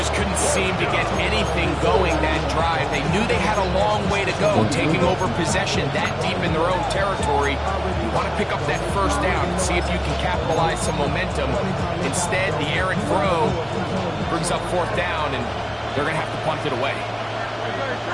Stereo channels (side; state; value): both; identical; correlation 1.00